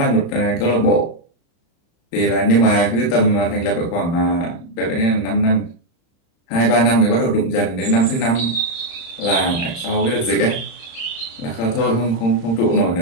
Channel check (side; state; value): right; late; 35 ms